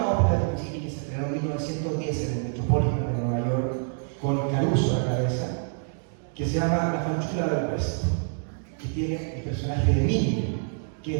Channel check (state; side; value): silent; left; digital silence